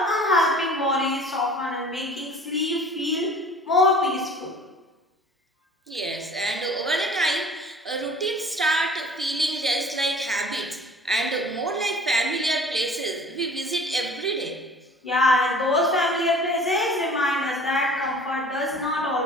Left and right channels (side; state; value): both; normal; correlation 0.47